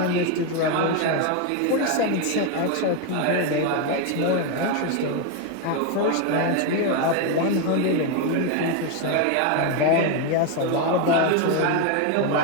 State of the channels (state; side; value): different; both; correlation 0.02